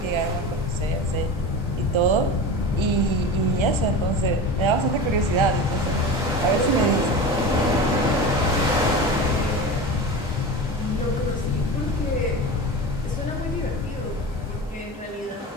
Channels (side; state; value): both; normal; correlation 0.29